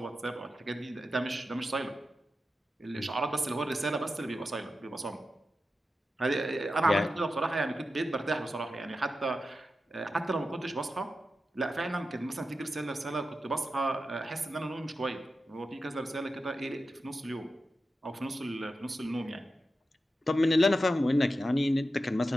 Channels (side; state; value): both; normal; correlation 0.91